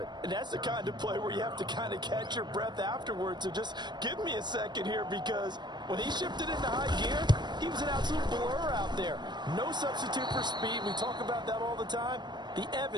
And that's the kind of play where you have to kind of catch your breath afterwards. So just give me a second here, because when he shifted into high gear, he was an absolute blur out there. No substitute for speed. We talk about that all the time. The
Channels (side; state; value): left; late; 0.21 ms